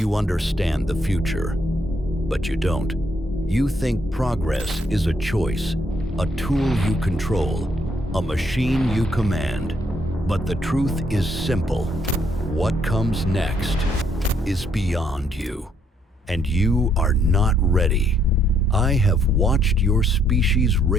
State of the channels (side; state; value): both; normal; correlation 0.71